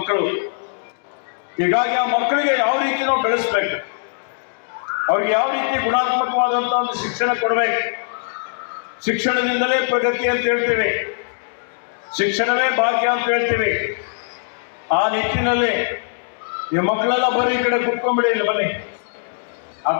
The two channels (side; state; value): right; silent; digital silence